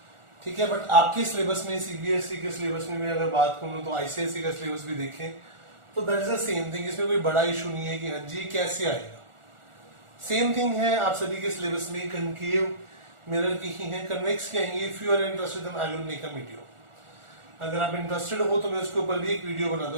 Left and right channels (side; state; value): left; late; 1.4 ms